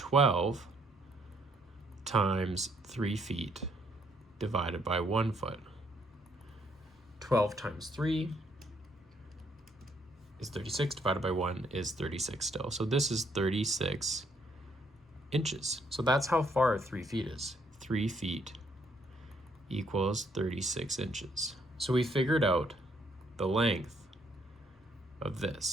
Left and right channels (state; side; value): normal; both; correlation 0.70